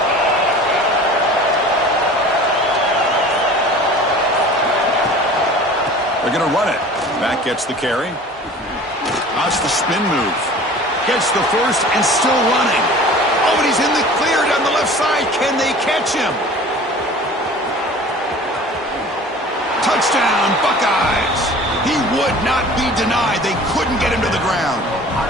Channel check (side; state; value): both; normal; correlation 0.43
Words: They're going to run it. Back gets the carry. That's the spin move. Gets the first and still running. Oh, and he's in the clear down the left side. Can they catch him? Touchdown, Buckeyes. He would not be denied. They couldn't get him to the ground.